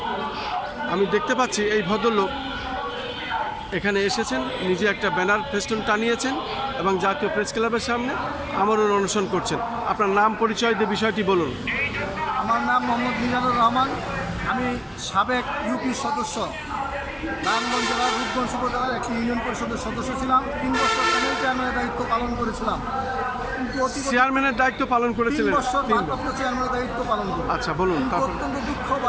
আমি দেখতে পাচ্ছি এই ভদ্রলোক এখানে এসেছেন, নিজে একটা ব্যানার ফেস্টুন টানিয়েছেন এবং জাতীয় প্রেস ক্লাবের সামনে আমরণ অনশন করছেন। আপনার নাম, পরিচয় দিয়ে বিষয়টি বলুন। আমার নাম মোহাম্মদ মিজানুর রহমান। আমি সাবেক ইউপি সদস্য, নারায়ণগঞ্জ জেলার রূপগঞ্জ উপজেলার একটি ইউনিয়ন পরিষদের সদস্য ছিলাম। 3 বছর প্যানেল চেয়ারম্যানের দায়িত্ব পালন করেছিলাম। কিন্তু চেয়ারম্যানের দায়িত্ব পালন 3 করেছিলেন? বছর ভারপ্রাপ্ত চেয়ারম্যানের দায়িত্ব পালন করি। আচ্ছা, বলুন। কিন্তু অত্যন্ত দুঃখ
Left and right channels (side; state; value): both; identical; correlation 1.00